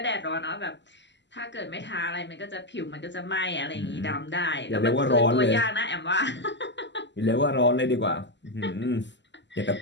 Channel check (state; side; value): late; right; 0.52 ms